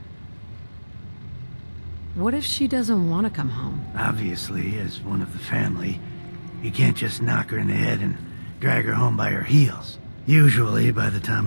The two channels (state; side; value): inverted; both; correlation -1.00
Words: What if she doesn't want to come home? Obviously, as one of the family, you can't just knock her in the head and drag her home by her heels. Usually, by the time